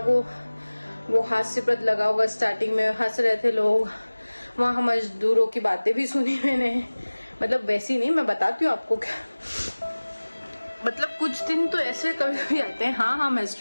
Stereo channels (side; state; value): both; inverted; correlation -1.00